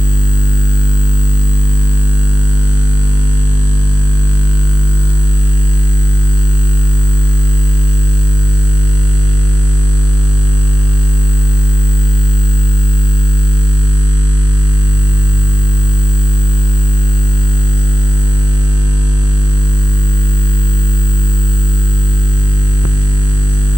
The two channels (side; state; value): right; late; 0.66 ms